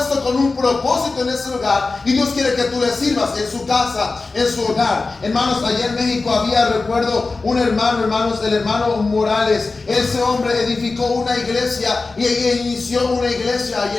con un propósito en ese lugar, y Dios quiere que tú le sirvas en su casa, en su hogar. Hermanos, allá en México había, recuerdo, un hermano, hermanos, el hermano Morales. Ese hombre edificó una iglesia y inició una iglesia allá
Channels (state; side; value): quieter; right; 3.8 dB